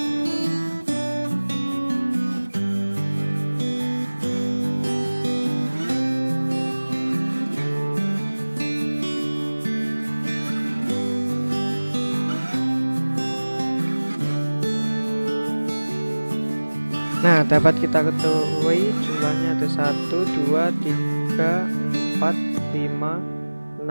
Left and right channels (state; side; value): inverted; both; correlation -1.00